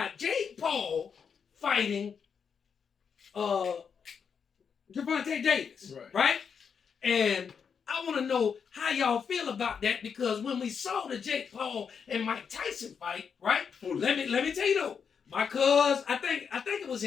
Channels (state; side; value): quieter; right; 6.6 dB